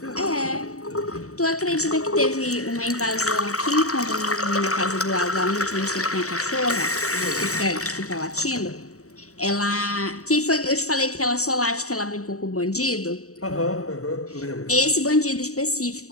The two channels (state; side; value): late; right; 0.65 ms